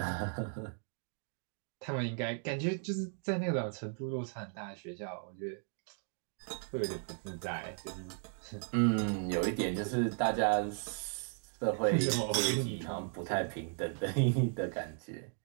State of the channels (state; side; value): silent; left; 54 dB below the other